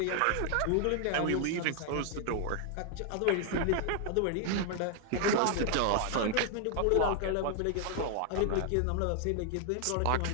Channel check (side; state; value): both; different; correlation 0.00